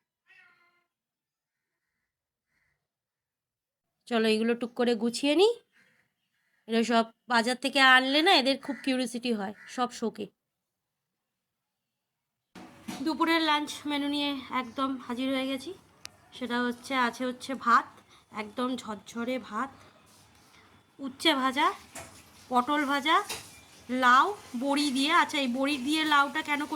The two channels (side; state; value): both; identical; correlation 1.00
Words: চলো এইগুলো টুক করে গুছিয়ে নিই। এরা সব বাজার থেকে আনলে না, এদের খুব কিউরিসিটি হয়, সব শোকে। দুপুরের লাঞ্চ মেনু নিয়ে একদম হাজির হয়ে গেছি। সেটা হচ্ছে ভাত, একদম ঝরঝরে ভাত, উচ্ছে ভাজা, পটল ভাজা, লাউ, বড়ি দিয়ে। আচ্ছা, এই বড়ি দিয়ে লাউটা কেন